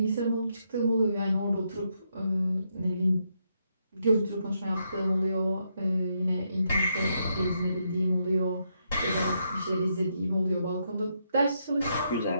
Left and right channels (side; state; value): both; inverted; correlation -0.79